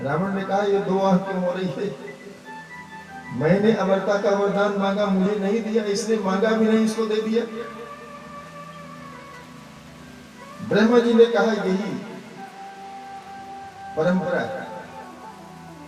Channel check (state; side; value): identical; both; correlation 1.00